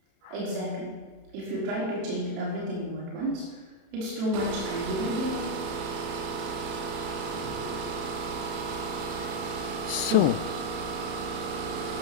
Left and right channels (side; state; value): left; late; 31 ms